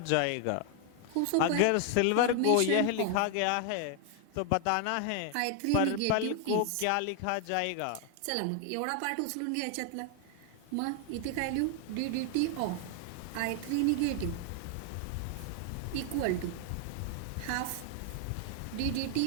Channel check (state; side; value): different; both; correlation 0.00